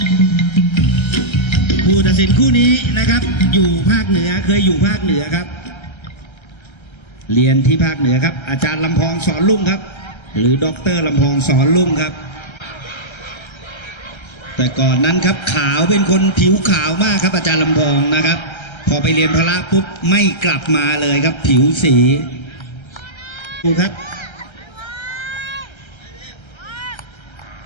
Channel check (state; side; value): late; right; 1.3 ms